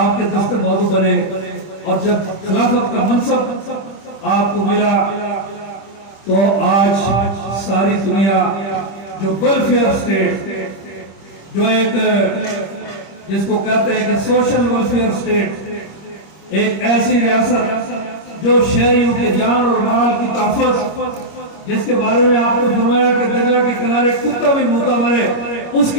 کے دست بازو بنے، اور جب خلافت کا منصب آپ کو ملا تو آج ساری دنیا جو ویلفیئر اسٹیٹ، جو ایک جس کو کہتے ہیں کہ سوشل ویلفیئر اسٹیٹ، ایک ایسی ریاست جو شہریوں کے جان اور مال کی تحفظ، جس کے بارے میں آپ نے فرمایا کہ دریا کے کنارے کتا بھی موتا مرے، اس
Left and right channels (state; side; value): late; right; 25 ms